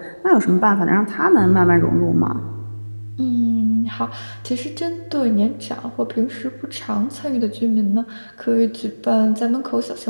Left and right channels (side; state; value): both; inverted; correlation -1.00